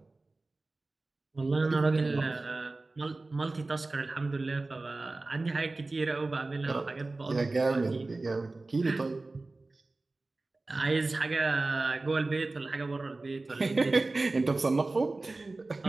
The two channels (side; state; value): left; quieter; 3.3 dB